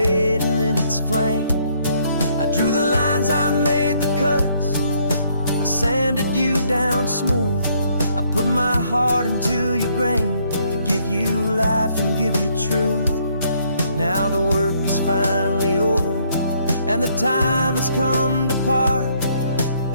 in its flame. I drew the lines, I made the cuts, I sanded you down smooth. I put my heart into your grain to give you life and give you truth. Now the work is finally over, and the time has come to part,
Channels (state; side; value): inverted; both; correlation -0.68